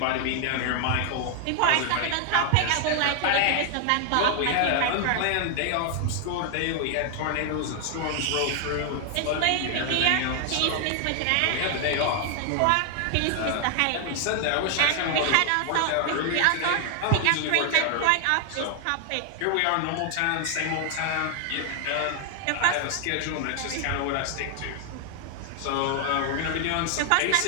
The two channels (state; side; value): different; both; correlation 0.00